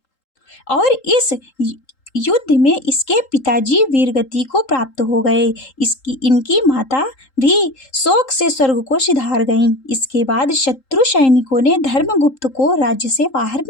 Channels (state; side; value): late; right; 3.8 ms